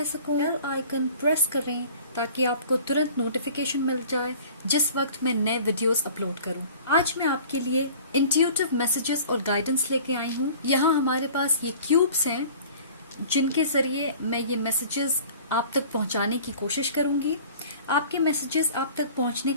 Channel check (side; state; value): both; inverted; correlation -0.47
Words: सकूं। बेल आइकन प्रेस करें ताकि आपको तुरंत नोटिफिकेशन मिल जाए जिस वक्त मैं नए वीडियोस अपलोड करूं। आज मैं आपके लिए इंट्यूटिव मैसेजेस और गाइडेंस लेके आई हूं। यहाँ हमारे पास ये क्यूब्स हैं जिनके जरिए मैं ये मैसेजेस आप तक पहुंचाने की कोशिश करूंगी। आपके मैसेजेस आप तक पहुंचने